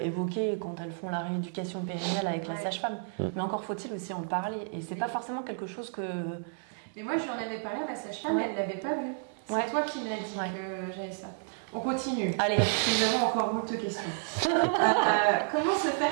évoqué quand elles font la rééducation périnnéale avec la sage-femme. Mais encore faut-il aussi en parler. Et c'est pas forcément quelque chose que... Mais moi, j'en avais parlé à ma sage-femme, elle l'avait pas vu. C'est toi qui m'as dit que j'avais ça. On continue. Allez. Nous avons encore beaucoup de questions. Comment se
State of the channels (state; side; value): silent; left; digital silence